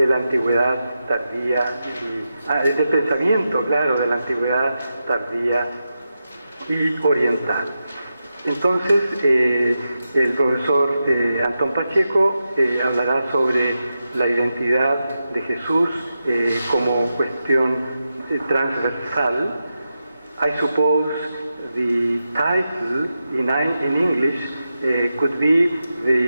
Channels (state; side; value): inverted; both; correlation -0.89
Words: la antigüedad tardía, del pensamiento, claro, de la antigüedad tardía y oriental. Entonces, el profesor Antón Pacheco hablará sobre la identidad de Jesús como cuestión transversal. I suppose the title in English could be